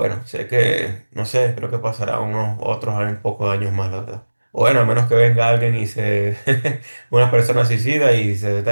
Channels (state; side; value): inverted; both; correlation -1.00